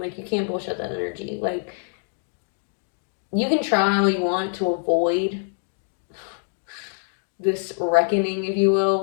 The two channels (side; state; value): right; silent; 62 dB below the other